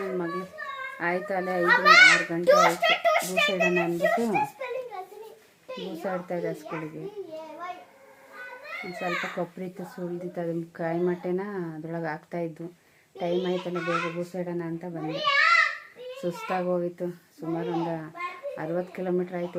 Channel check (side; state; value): both; identical; correlation 1.00